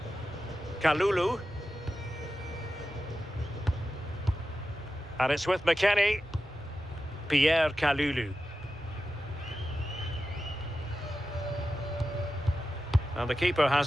Kalulu. And it's with McKennie. Pierre Kalulu. And the keeper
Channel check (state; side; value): normal; both; correlation 0.92